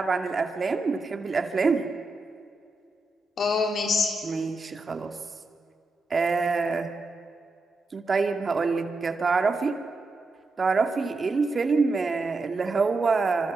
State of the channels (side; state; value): left; quieter; 3.1 dB